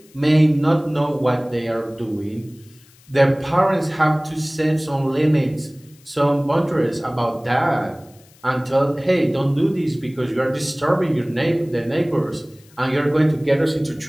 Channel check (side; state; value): left; noise; hiss, 28 dB below the sound